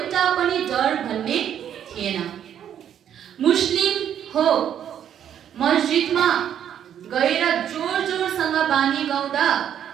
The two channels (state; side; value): quieter; left; 9.6 dB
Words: पनि डर भन्ने थिएन। मुस्लिम हो मस्जिदमा गएर जोर जोरसँग बानी